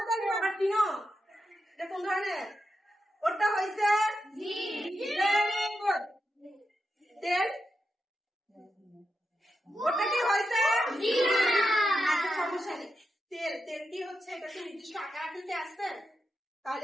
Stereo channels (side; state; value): both; normal; correlation 0.87